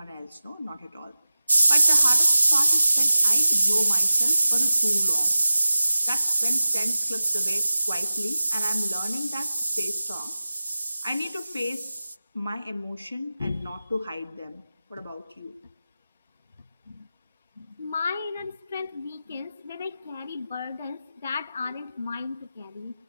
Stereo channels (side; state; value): both; inverted; correlation -0.95